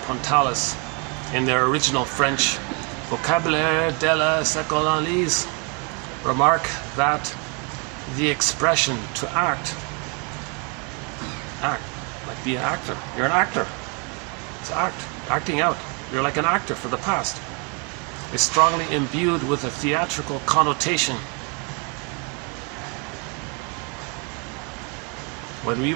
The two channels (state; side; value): quieter; left; 34.3 dB